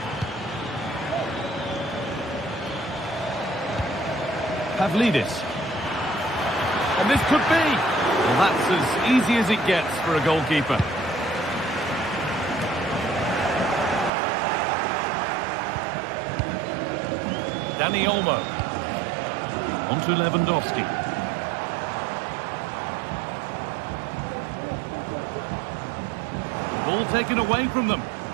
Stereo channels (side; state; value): left; drops out; at 14.1 s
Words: Pavlidis. And this could be. Well, that's as easy as it gets for a goalkeeper. Dani Olmo. On to Lewandowski. Ball taken away from them.